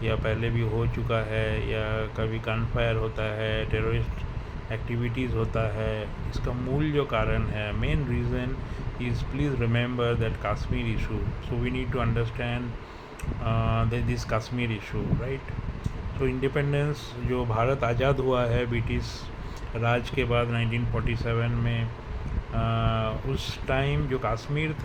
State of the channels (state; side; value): identical; both; correlation 1.00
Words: या पहले भी हो चुका है, या कभी गन फायर होता है, टेररिस्ट एक्टिविटीज़ होता है, इसका मूल जो कारण है, main reason is, please remember that Kashmir issue. So we need to understand that this Kashmir issue, right. So independence, जो भारत आज़ाद हुआ है ब्रिटिश राज के बाद 1947 में, उस टाइम जो कश्मीर